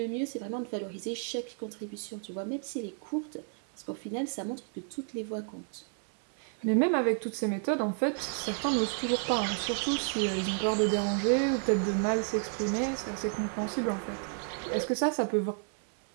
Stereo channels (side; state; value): left; silent; 57 dB below the other